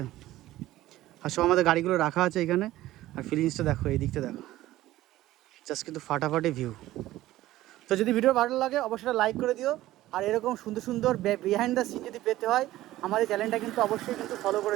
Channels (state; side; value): quieter; left; 15.6 dB